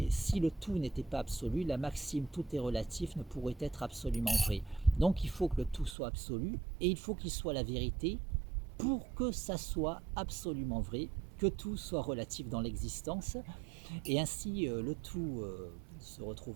le tout n'était pas absolu, la maxime tout est relatif ne pourrait être absolument vraie. Donc il faut que le tout soit absolu et il faut qu'il soit la vérité pour que ça soit absolument vrai, que tout soit relatif dans l'existence. Et ainsi le tout se retrouve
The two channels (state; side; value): drops out; left; at 6.0 s